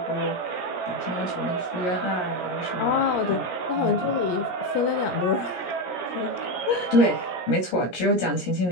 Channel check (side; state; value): right; late; 17 ms